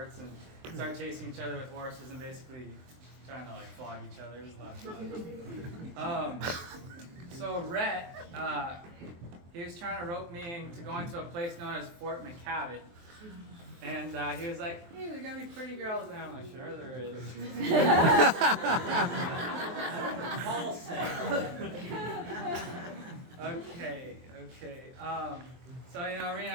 and started chasing each other with horses and basically trying to flog each other. It was a lot of fun. So Rhett, he was trying to rope me into going to a place known as Fort McKavett. And he was like, hey, there's going to be pretty girls there. I'm like, sure there is. All Okay. So,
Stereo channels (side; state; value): left; late; 23 ms